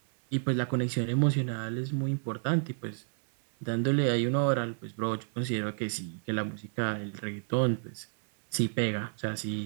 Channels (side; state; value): left; silent; 57 dB below the other